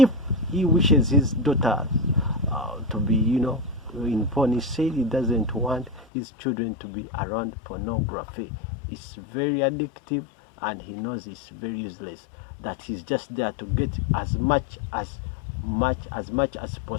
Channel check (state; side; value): drops out; right; at 6.1 s